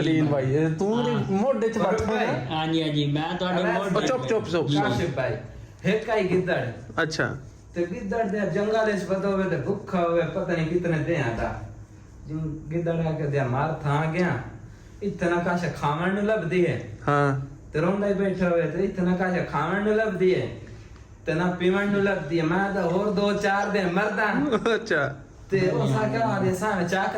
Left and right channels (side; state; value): both; identical; correlation 1.00